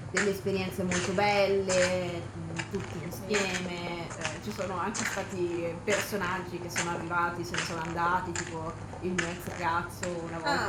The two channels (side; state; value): both; identical; correlation 1.00